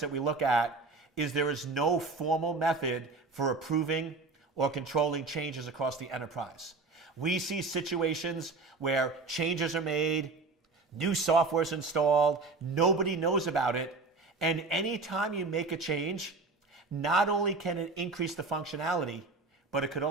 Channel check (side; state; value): left; quieter; 3.8 dB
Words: we look at is there is no formal method for approving or controlling changes across the enterprise. We see situations where changes are made, new software is installed, nobody knows about it, and anytime you make a change, not only can it increase the functionality, but it could